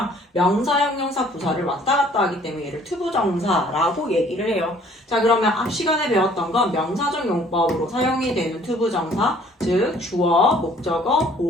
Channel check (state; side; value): normal; both; correlation 0.57